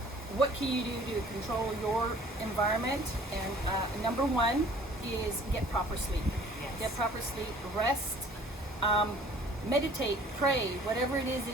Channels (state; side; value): normal; both; correlation 0.52